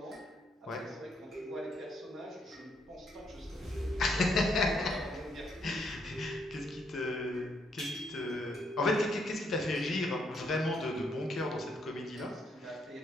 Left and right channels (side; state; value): both; normal; correlation 0.74